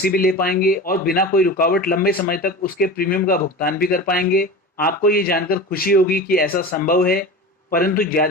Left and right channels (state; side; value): normal; both; correlation 0.31